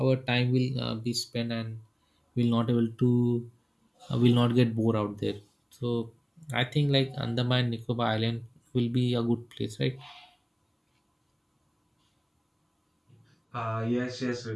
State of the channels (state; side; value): identical; both; correlation 1.00